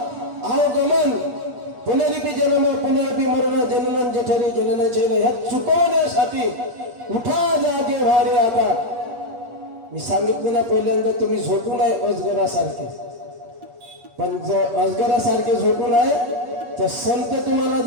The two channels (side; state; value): left; late; 8.5 ms